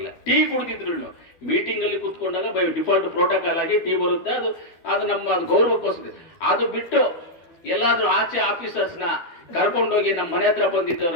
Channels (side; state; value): right; late; 12 ms